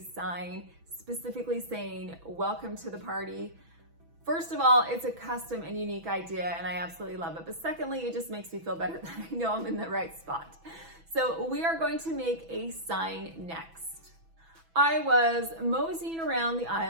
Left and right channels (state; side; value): late; left; 6.1 ms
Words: specifically saying, "Welcome to the party." First of all, it's a custom and unique idea and I absolutely love it. But secondly, it just makes me feel better that I know I'm in the right spot. So we are going to make a sign next. I was moseying around the